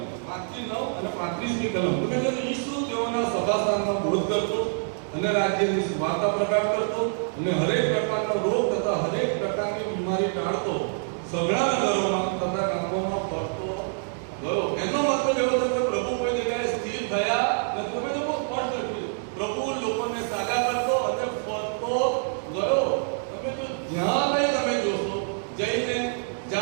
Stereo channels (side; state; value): left; silent; digital silence